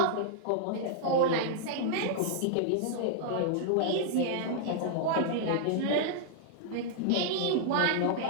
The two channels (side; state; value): both; different; correlation -0.01